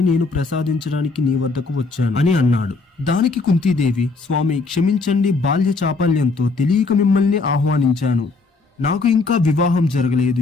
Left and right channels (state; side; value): quieter; right; 3.9 dB